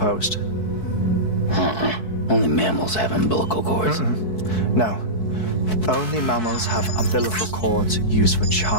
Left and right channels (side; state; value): right; late; 4.6 ms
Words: Only mammals have umbilical cords. No. Only mammals have umbilical cords used for